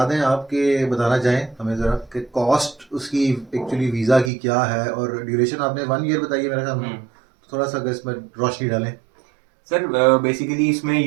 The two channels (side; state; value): left; drops out; at 4.3 s